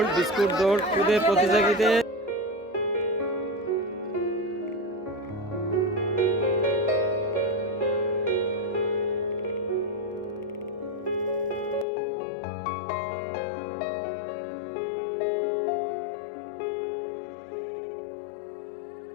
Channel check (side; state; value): right; drops out; at 11.9 s